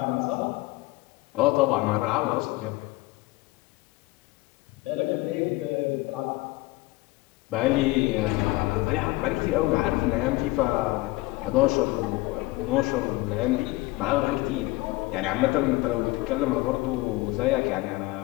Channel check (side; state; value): right; quieter; 20.3 dB